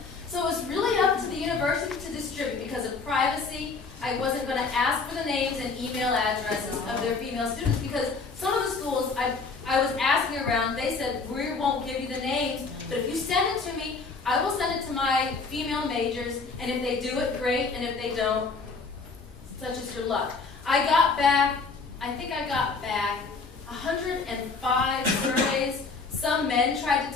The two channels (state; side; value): quieter; right; 4.4 dB